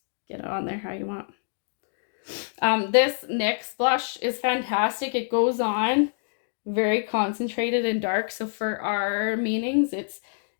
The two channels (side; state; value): right; silent; digital silence